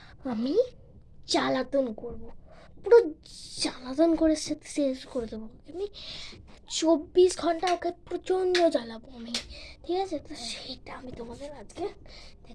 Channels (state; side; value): identical; both; correlation 1.00